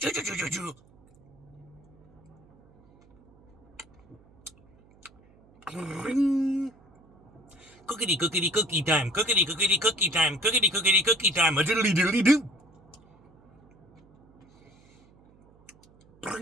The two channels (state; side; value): noise; right; hum, 29 dB below the sound